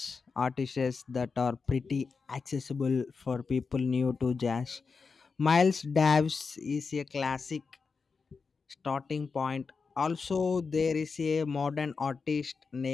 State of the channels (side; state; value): right; quieter; 4.9 dB